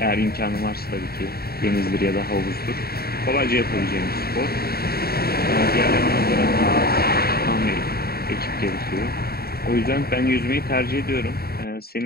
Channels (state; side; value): late; right; 0.45 ms